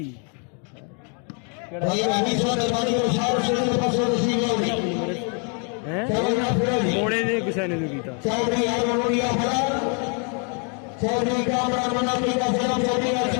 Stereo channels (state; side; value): quieter; right; 39.1 dB